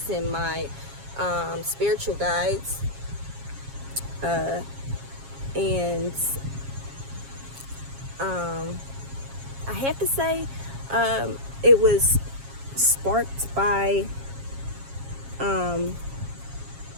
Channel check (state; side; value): late; left; 7.3 ms